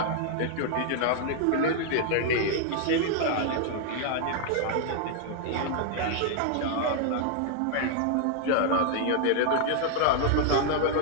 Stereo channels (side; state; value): both; different; correlation 0.00